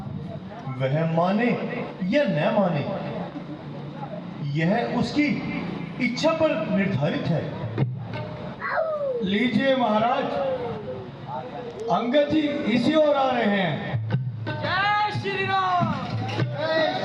वह माने या न माने, यह उसकी इच्छा पर निर्धारित है। लीजिए महाराज, अंगद जी इसी ओर आ रहे हैं। जय श्री राम।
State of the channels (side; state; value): both; identical; correlation 1.00